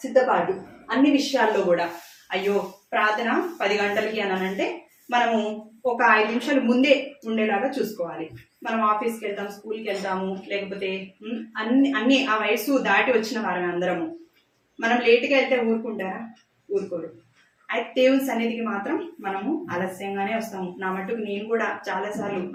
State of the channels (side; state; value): both; identical; correlation 1.00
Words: సిద్ధపాటు అన్ని విషయాల్లో కూడా. అయ్యో ప్రార్థన 10 గంటలకి అనంటే మనము ఒక 5 నిమిషాలు ముందే ఉండేలాగా చూసుకోవాలి. మనం ఆఫీస్కి వెళ్తాం, స్కూల్కి వెళ్తాము, లేకపోతే అన్ని ఆ వయసు దాటి వచ్చిన వారమే అందరము. మనం లేట్గా వెళ్తే ఊరుకుంటారా? ఊరుకోరు. అయితే దేవుని సన్నిధికి మాత్రం మనము ఆలస్యంగానే వస్తాము. నా మట్టుకు నేను కూడా చాలాసార్లు